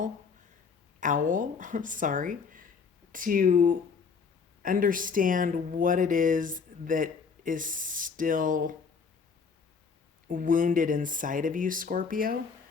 sorry, to understand what it is that is still wounded inside of you, Scorpio,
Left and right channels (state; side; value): quieter; right; 5.5 dB